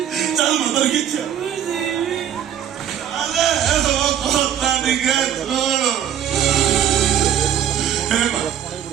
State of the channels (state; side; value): quieter; left; 9.8 dB